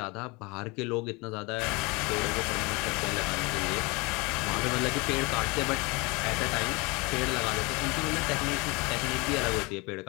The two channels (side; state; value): right; quieter; 26.9 dB